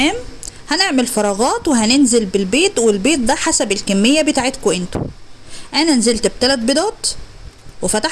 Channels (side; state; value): both; identical; correlation 1.00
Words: هنعمل فراغات وهننزل بالبيض، والبيض ده حسب الكمية بتاعتكم انتوا. انا نزلت ب3 بيضات